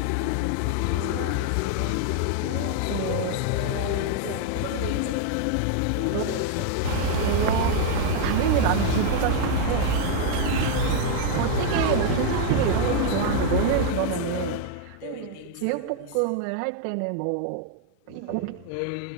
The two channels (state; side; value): different; both; correlation 0.00